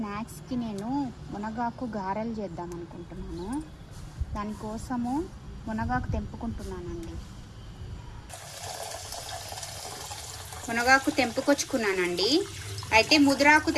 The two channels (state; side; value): identical; both; correlation 1.00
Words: నేను మునగాకు గారెలు చేద్దాం అనుకుంటున్నాను. దానికోసము మునగాకు తెంపుకుంటున్నానండి. మునగాకు తెంపుకొచ్చుకున్నానండి. అయితే ముదురాకు